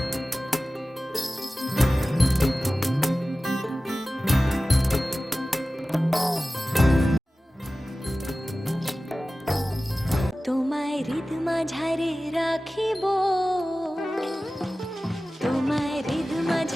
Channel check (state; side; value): normal; both; correlation 0.96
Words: তোমায় হৃদ মাঝারে রাখিব, তোমায় হৃদ